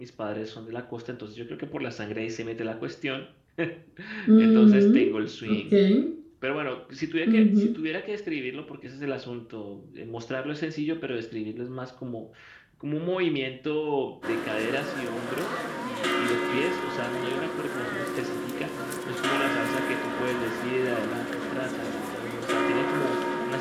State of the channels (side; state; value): both; identical; correlation 1.00